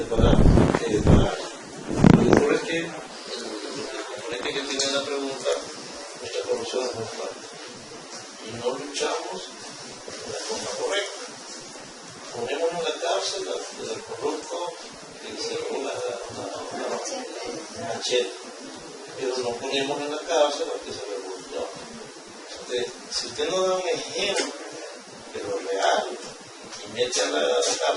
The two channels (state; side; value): identical; both; correlation 1.00